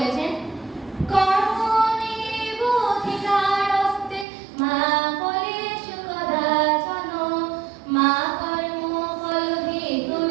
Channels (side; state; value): left; drops out; at 4.2 s